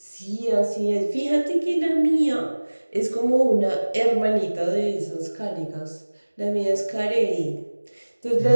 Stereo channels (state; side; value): inverted; both; correlation -1.00